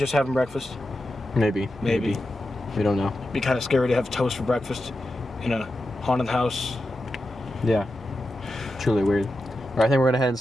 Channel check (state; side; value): normal; both; correlation 0.90